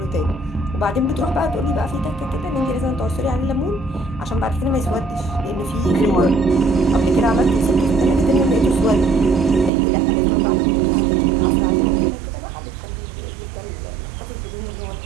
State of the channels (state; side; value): drops out; left; at 9.7 s